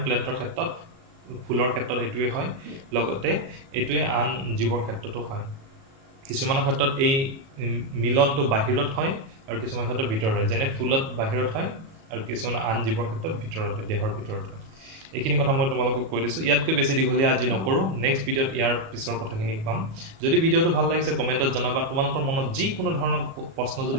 প্লেণ্টৰ ক্ষেত্ৰত ফুলৰ ক্ষেত্ৰত এইটোৱে হয় লগতে এইটোৱে আন জীৱৰ ক্ষেত্ৰতো হয় কিছুমানৰ ক্ষেত্ৰত এই মিলনটো বাহিৰত হয় আৰু কিছুমান ক্ষেত্ৰত ভিতৰত হয় যেনে ফুলত বাহিৰত হয় আৰু কিছুমান আন জীৱৰ ক্ষেত্ৰত ভিতৰত হয় দেহৰ ভিতৰত হয় এইখিনি কথা মই তোমালোকক কৈ দিছোঁ ইয়াতকৈ বেছি দীঘলীয়া আজি নকৰোঁ নেক্সট ভিডিঅ'ত ইয়াৰ পিছৰ কথাখিনি পাম যদি ভিডিঅ'টো ভাল লাগিছে কমেণ্টত জনাবা তোমালোকৰ মনত যিকোনো ধৰণৰ প্ৰশ্ন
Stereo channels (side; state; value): left; late; 37 ms